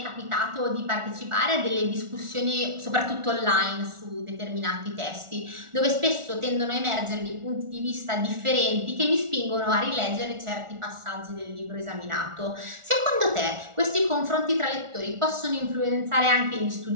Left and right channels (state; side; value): late; left; 1.4 ms